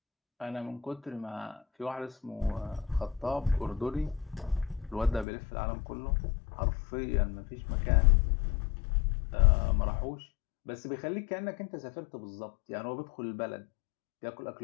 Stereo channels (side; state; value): right; drops out; at 5.2 s